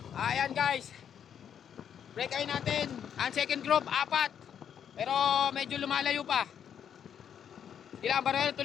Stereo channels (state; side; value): quieter; right; 8.6 dB